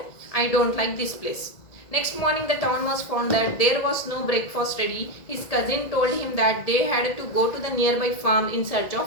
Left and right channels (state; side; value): late; right; 1.8 ms